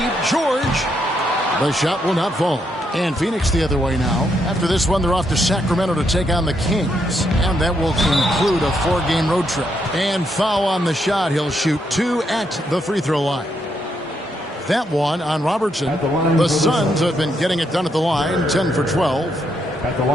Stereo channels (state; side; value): normal; both; correlation 0.77